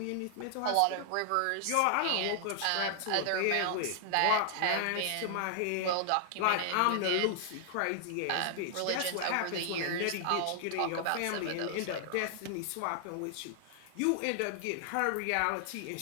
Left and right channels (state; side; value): different; both; correlation 0.00